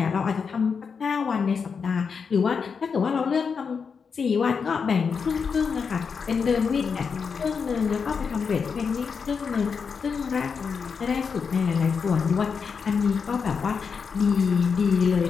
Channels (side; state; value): right; quieter; 5.8 dB